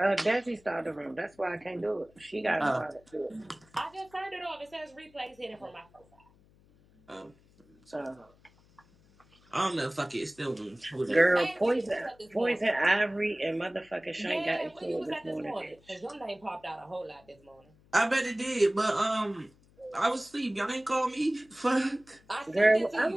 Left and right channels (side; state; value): left; noise; hum, 29 dB below the sound